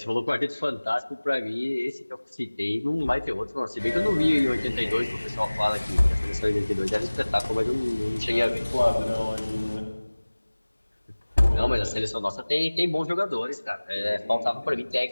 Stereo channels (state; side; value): inverted; both; correlation -1.00